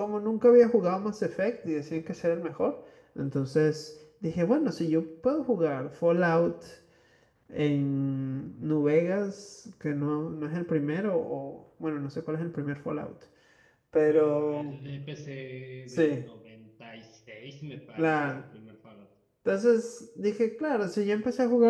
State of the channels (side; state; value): both; identical; correlation 1.00